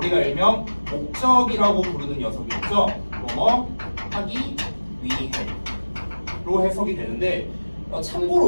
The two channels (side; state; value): both; inverted; correlation -1.00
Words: 일명 목적이라고 부르는 녀석이 있죠. 뭐뭐 하기 위해로 해석이 되는데,